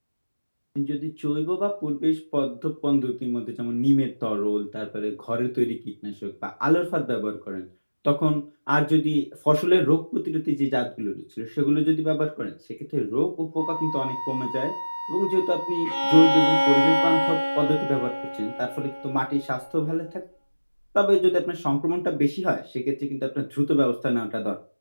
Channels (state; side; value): inverted; both; correlation -1.00